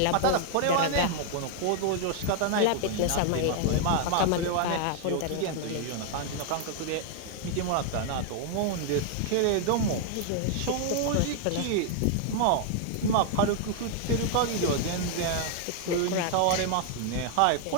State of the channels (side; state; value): both; different; correlation 0.00